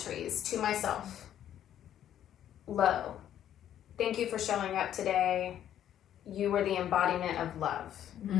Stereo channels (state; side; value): quieter; right; 10.8 dB